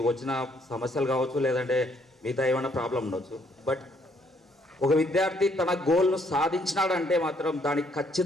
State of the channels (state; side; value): normal; both; correlation 0.68